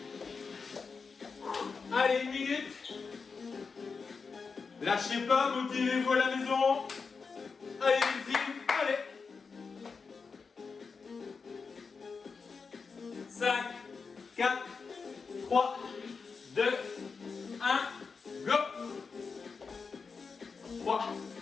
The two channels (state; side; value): quieter; right; 5.0 dB